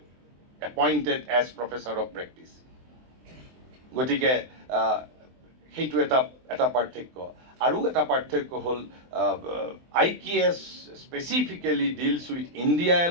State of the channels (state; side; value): late; left; 23 ms